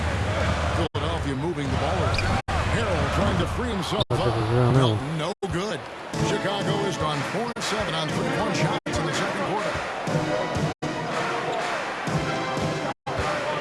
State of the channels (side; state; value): both; identical; correlation 1.00